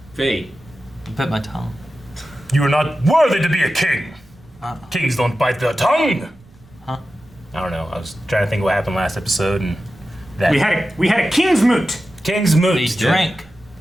Fate. You bit my tongue. You are not worthy to be a king. Kings don't bite their tongue. Huh? I don't know. I was trying to think what happened last episode, and that We had a king's moot. King's moot. They drank.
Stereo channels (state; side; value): noise; right; rumble, 27 dB below the sound